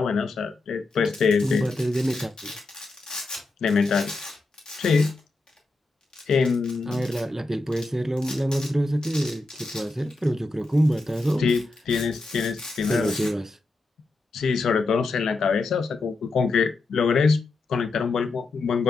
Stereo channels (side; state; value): right; quieter; 3.2 dB